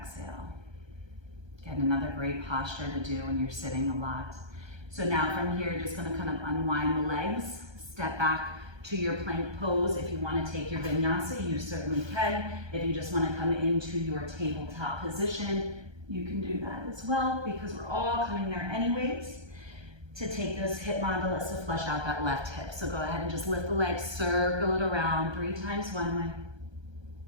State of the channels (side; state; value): left; late; 1.3 ms